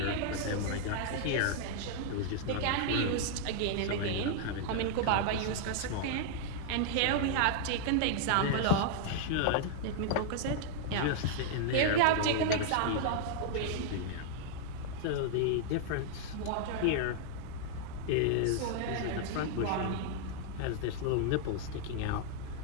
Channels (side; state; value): both; different; correlation -0.01